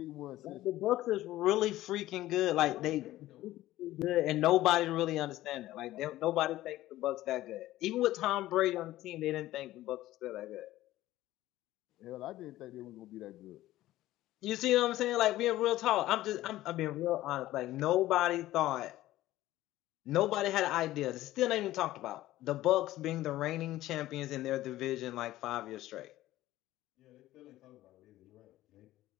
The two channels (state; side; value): quieter; right; 15.5 dB